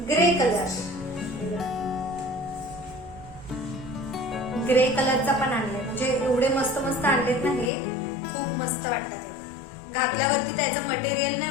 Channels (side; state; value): right; drops out; at 7.7 s